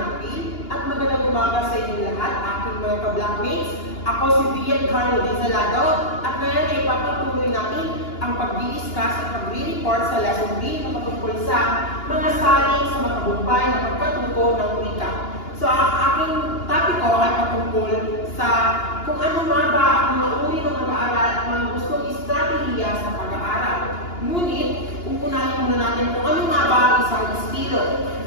at magandang umaga sa inyo lahat, aking mga ka-blackmates. Ako si Vian Carlo Dizalado at ngayon ay papatuloy natin ang pag-discuss at pag-report sa lesson B na patungkol sa mga salin sa matagumpay na pagkatuto ng wika. So ang aking topic ko ay patungkol sa kung ano nga ba ang mga uri ng pag-aaral at mga gustong estratehiya sa pag-aaral. Ngunit, unahin muna natin kung ano nga ba ang isang estilo.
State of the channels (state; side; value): late; right; 2.9 ms